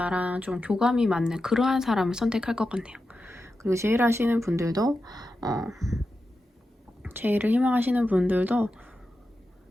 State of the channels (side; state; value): both; normal; correlation 0.90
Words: 좀 교감이 맞는 그러한 사람을 선택할 것 같네요. 그리고 제일 제일을 희망하시는 분들도